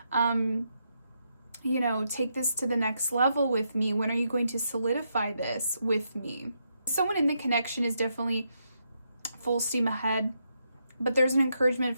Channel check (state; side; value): inverted; both; correlation -0.80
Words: take this to the next level with me? When are you going to solidify this with me? Someone in the connection is definitely full steam ahead, but there's an encouragement